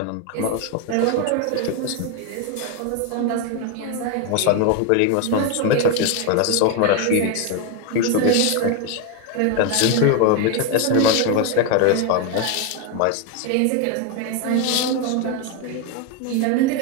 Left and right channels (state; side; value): different; both; correlation 0.02